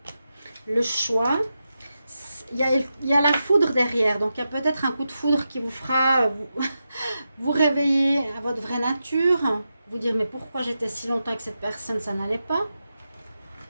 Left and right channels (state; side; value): inverted; both; correlation -0.89